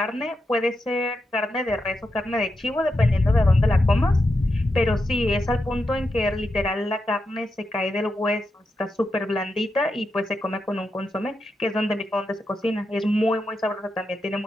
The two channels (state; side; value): normal; both; correlation 0.87